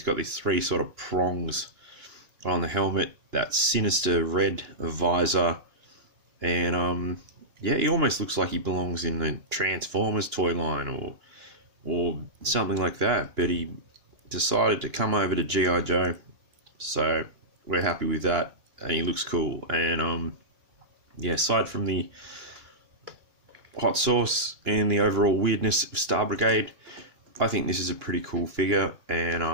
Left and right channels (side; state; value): left; late; 2.9 ms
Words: got these three sort of prongs on the helmet, that sinister red visor, and yeah, he almost looks like he belongs in the Transformers toy line or something like that. But he decided to come over to G.I.Joe, so we're happy with that, and he looks cool. And yeah, aside from the hot sauce and the overall weirdness of Star Brigade, I think this is a pretty cool figure, and